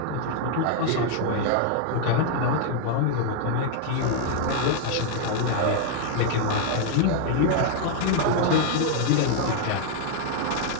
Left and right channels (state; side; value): different; both; correlation 0.00